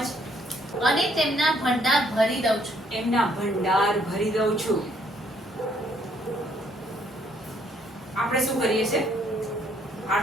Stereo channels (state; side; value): normal; both; correlation 0.67